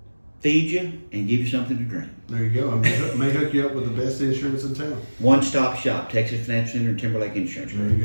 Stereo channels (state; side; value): inverted; both; correlation -1.00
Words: Feed you and give you something to drink. There you go. I may hook you up with the best insurance in town. One-stop shop, Texas Financial Center and Timberlake Insurance. There you